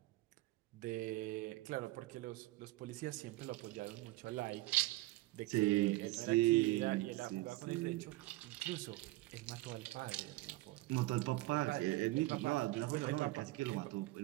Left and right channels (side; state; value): left; quieter; 19.1 dB